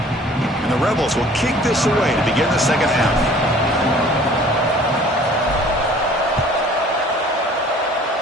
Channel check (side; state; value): both; normal; correlation 0.51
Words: And the Rebels will kick this away to begin the second half.